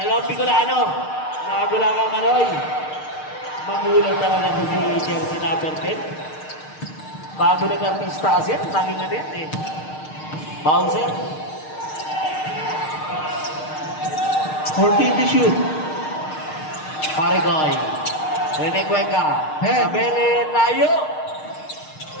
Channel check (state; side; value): late; right; 6.5 ms